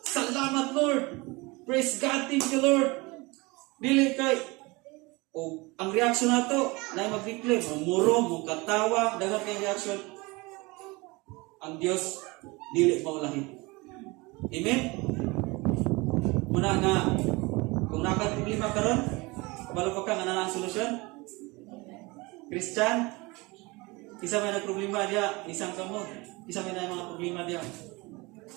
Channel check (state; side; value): quieter; left; 24.4 dB